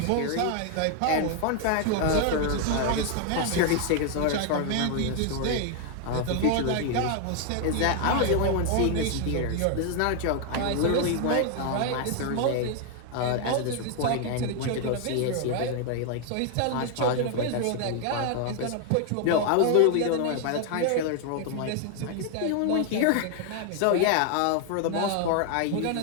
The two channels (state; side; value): different; both; correlation 0.00